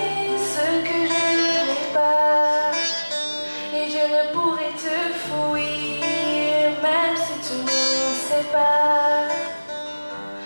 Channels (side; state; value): both; inverted; correlation -1.00